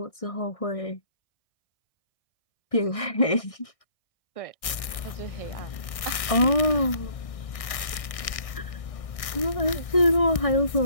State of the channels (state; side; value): late; right; 1.6 ms